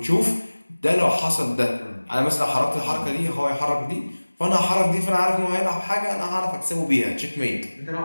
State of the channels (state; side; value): inverted; both; correlation -1.00